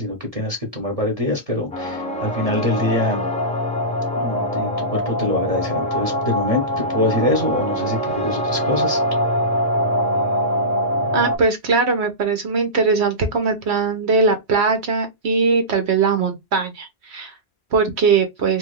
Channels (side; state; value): both; normal; correlation -0.20